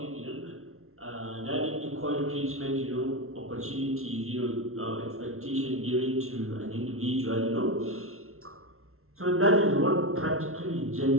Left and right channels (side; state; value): left; late; 0.62 ms